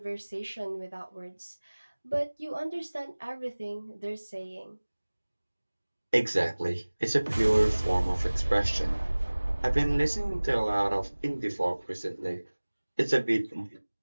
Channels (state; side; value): inverted; both; correlation -1.00